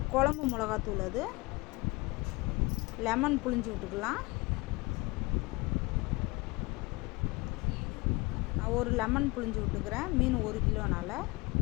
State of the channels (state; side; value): quieter; right; 24.0 dB